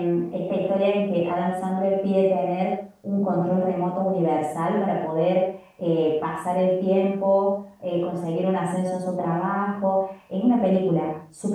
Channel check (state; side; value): identical; both; correlation 1.00